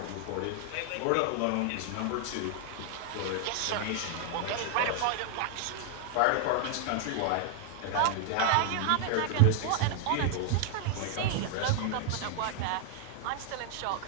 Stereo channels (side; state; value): both; different; correlation 0.00